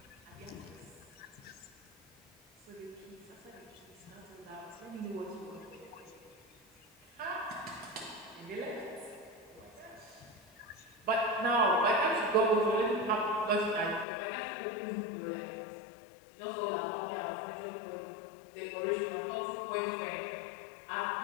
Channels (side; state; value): right; drops out; at 14.1 s